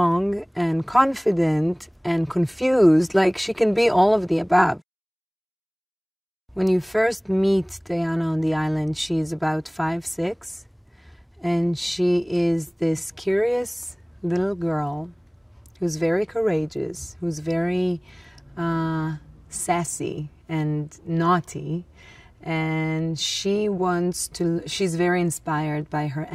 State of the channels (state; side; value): identical; both; correlation 1.00